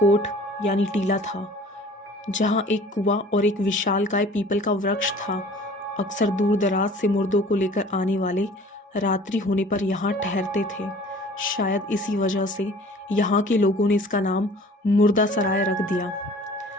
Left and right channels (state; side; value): normal; both; correlation 0.48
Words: यानी टीला था, जहां एक कुआं और एक विशालकाय पीपल का वृक्ष था। अक्सर दूर दराज से मुर्दों को लेकर आने वाले रात्रि होने पर यहाँ ठहरते थे। शायद इसी वजह से यहाँ के लोगों ने इसका नाम मुर्दा सराय रख दिया।